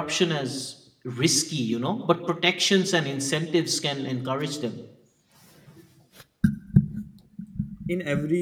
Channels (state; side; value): identical; both; correlation 1.00